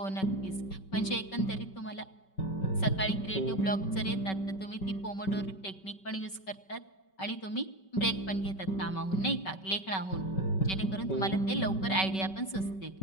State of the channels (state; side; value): late; right; 5.2 ms